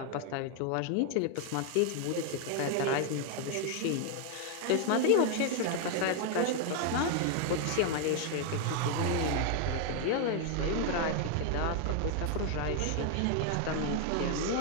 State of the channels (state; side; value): different; both; correlation 0.00